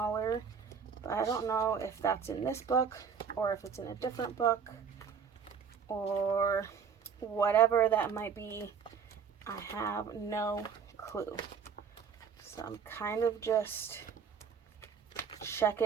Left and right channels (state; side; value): quieter; left; 6.6 dB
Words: but I don't know if that's in this book or if it's in a different book or whatever that might be. I have no clue. So I'm kind of just